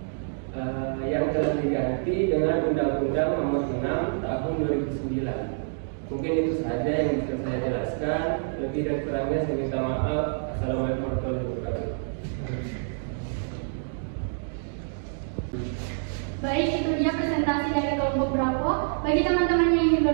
yang telah diganti dengan Undang-Undang Nomor 6 Tahun 2009. Mungkin itu saja yang bisa saya jelaskan. Lebih dan kurangnya saya minta maaf. Assalamualaikum warahmatullahi wabarakatuh. Baik, itu dia presentasi dari kelompok Bravo. Bagi teman-teman yang ingin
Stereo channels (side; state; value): left; silent; digital silence